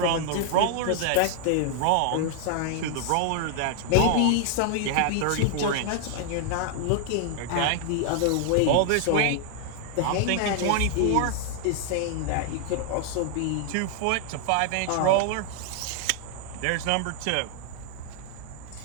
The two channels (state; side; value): different; both; correlation 0.00